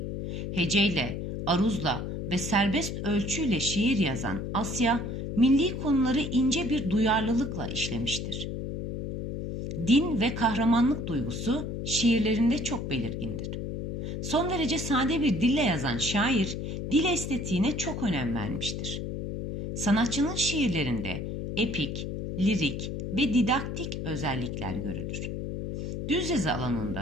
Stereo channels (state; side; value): noise; left; hum, 5 dB below the sound